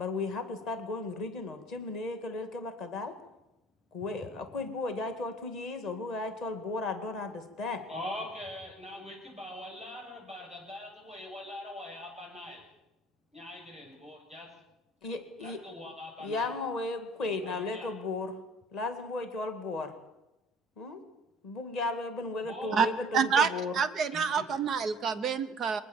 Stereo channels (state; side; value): normal; both; correlation 0.50